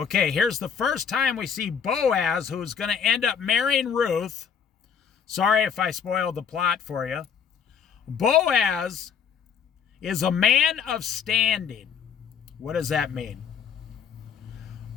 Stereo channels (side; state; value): right; quieter; 7.2 dB